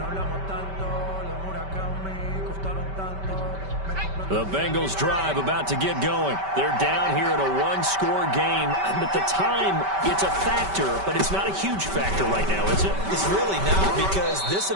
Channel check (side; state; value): left; late; 5.2 ms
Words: The Bengals drive about to get going. They're down here in a one-score game. At the time, it's a factor, but it's not a huge factor right now, is it? It's really not, because this